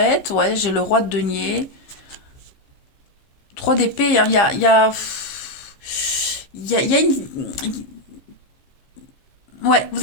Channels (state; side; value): late; right; 15 ms